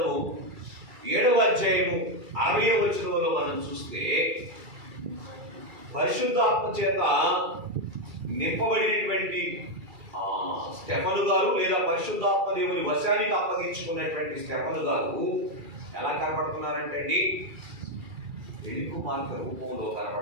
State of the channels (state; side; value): late; left; 2.3 ms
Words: 7వ అధ్యాయము 60వ వచనంలో మనం చూస్తే పరిశుద్ధాత్మ చేత నింపబడినటువంటి స్టెఫను గారు, లేదా పరిశుద్ధాత్మ దేవుని వశానికి అప్పగించుకున్నటువంటి స్టెఫను గారు ఎలా కనపడుతున్నారంటే అండి, పెళ్లి కుమార్తె రూపంలో